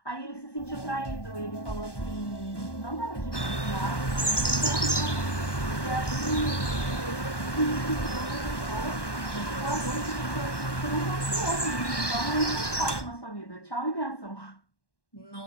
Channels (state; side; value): late; right; 1.1 ms